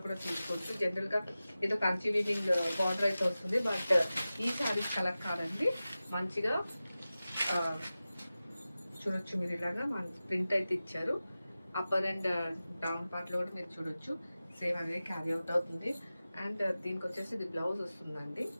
కూడా చూసుకోవచ్చు. జనరల్ గా ఏదో కంచి వీవింగ్ బార్డర్ అయితే వస్తుంది, బట్ ఈ శారీస్ కలర్ కాదండి. మంచిగా చూడొచ్చు మీరు, ఇలాగా మన ప్రింట్ అయితే ఇచ్చారు. అప్పర్ అండ్ డౌన్ పార్ట్ లో కూడా మీరు చూడొచ్చు, సేమ్ అనేది క్యారీ అవుట్ అవుతుంది. అండ్ దీనికి వచ్చేసి ఇది బ్లౌజ్ వస్తుందండి.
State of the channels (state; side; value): inverted; both; correlation -0.95